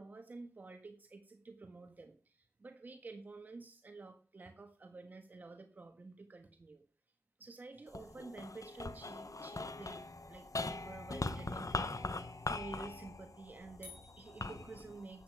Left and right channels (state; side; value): normal; both; correlation 0.59